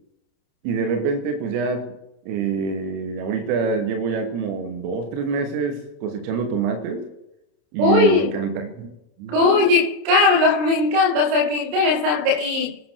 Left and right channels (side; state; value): left; late; 30 ms